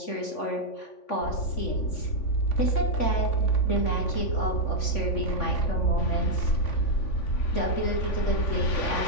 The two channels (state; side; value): late; right; 3.5 ms